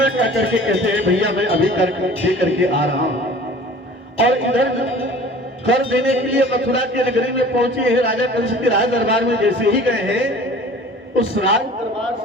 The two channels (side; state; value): both; normal; correlation 0.45